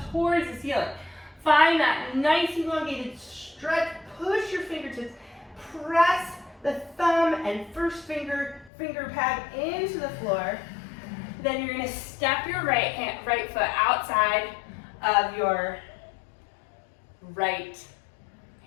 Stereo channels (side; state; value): right; drops out; at 8.7 s